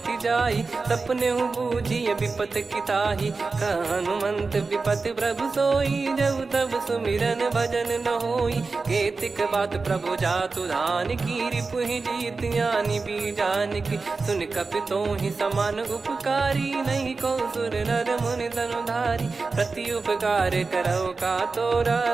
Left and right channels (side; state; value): left; quieter; 4.1 dB